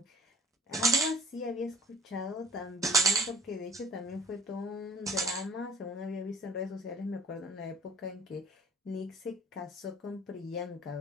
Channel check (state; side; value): normal; both; correlation 0.53